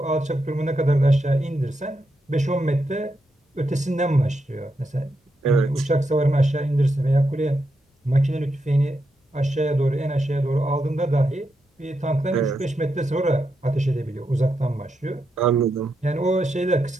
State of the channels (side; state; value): both; normal; correlation 0.84